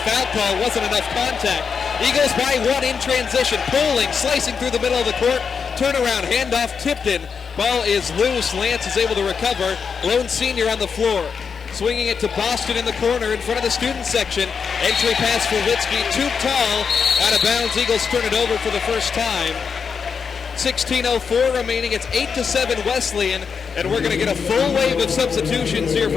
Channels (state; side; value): quieter; right; 6.1 dB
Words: call, wasn't enough contact. Eagles by 1 in transition. Poling, slicing through the middle of the court. Turnaround, handoff, Tipton. Ball is loose. Lance is able to recover. Lone senior on the floor. Swinging it to Boston in the corner in front of the student section. Entry pass for Litsky, too tall. Out of bounds, Eagles turn it over for the first time. 16:04 remaining. It's 8-7 Wesleyan, and we're going to get a full wave of substitutions here